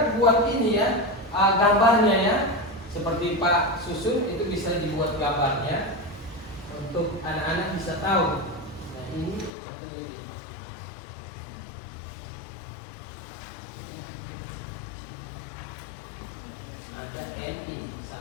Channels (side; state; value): right; drops out; at 9.5 s